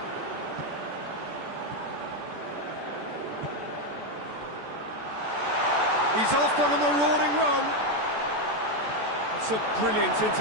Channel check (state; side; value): late; left; 14 ms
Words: He's off on a marauding run. It's a brilliant